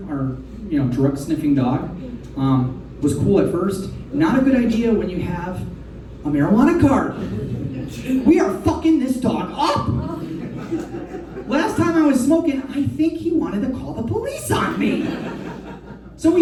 our drug sniffing dog. Was cool at first. Not a good idea when you have a marijuana card. We are fucking this dog up. Last time I was smoking, I think he wanted to call the police on me. So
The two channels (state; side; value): identical; both; correlation 1.00